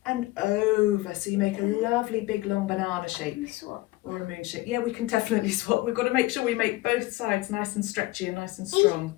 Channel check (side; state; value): right; quieter; 19.5 dB